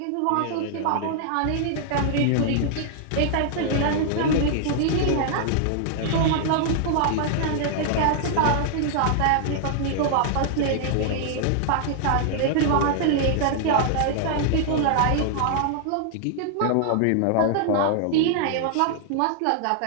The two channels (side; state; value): both; different; correlation -0.01